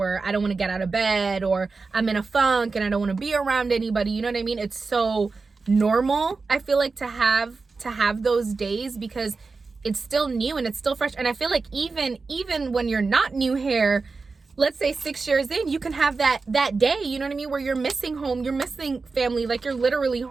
I don't want to get out of bed, or I'm in a funk and I don't want to be around anybody. You know what I mean? It's so normal, I feel like, to have those days, because it's still new and it's still fresh. And I feel like even when you're not new here, let's say 6 years in, you can have that day, you know what I mean, where you're missing home, you're missing family, like you're literally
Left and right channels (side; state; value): left; quieter; 4.2 dB